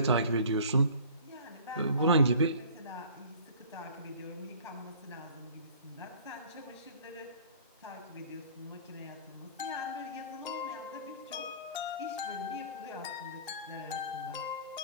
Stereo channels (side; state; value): both; inverted; correlation -0.48